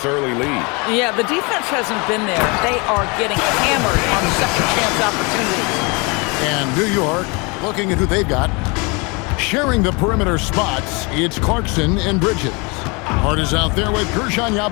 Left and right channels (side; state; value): right; quieter; 29.5 dB